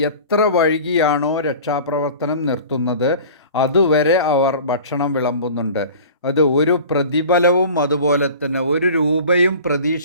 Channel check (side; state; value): both; inverted; correlation -0.41